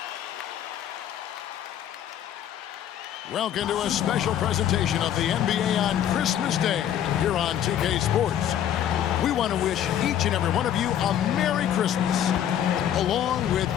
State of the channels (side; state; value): right; quieter; 10.4 dB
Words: Welcome to a special presentation of the NBA on Christmas Day here on 2K Sports. We want to wish each and every one of you a Merry Christmas. Along with